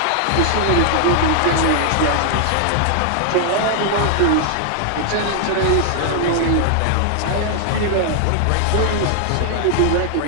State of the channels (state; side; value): different; both; correlation 0.00